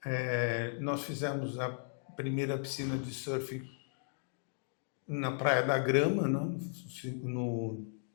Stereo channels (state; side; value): silent; right; digital silence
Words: Nós fizemos a primeira piscina de surf na Praia da Grama, né?